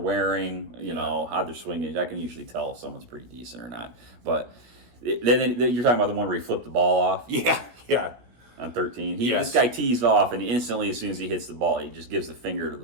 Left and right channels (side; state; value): left; late; 16 ms